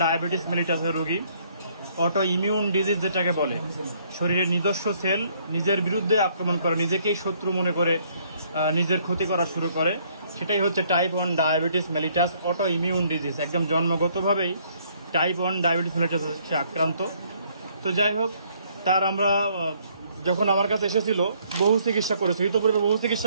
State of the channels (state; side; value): inverted; both; correlation -0.66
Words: ডায়াবেটিস মেলিটাসের রোগী। অটো ইমিউন ডিজিজ যেটাকে বলে, শরীরের নিজস্ব সেল নিজের বিরুদ্ধে আক্রমণ করে, নিজেকেই শত্রু মনে করে নিজের ক্ষতি করা শুরু করে, সেটাই হচ্ছে type 1 diabetes mellitus auto immune disease. একদম জন্মগতভাবেই টাইপ 1 ডায়াবেটিস মেলিটাস সে আক্রান্ত। তো যাই হোক, তার আমরা যখন আমার কাছে এসেছিল বহু চিকিৎসা করেছি, ইতোপূর্বে বহু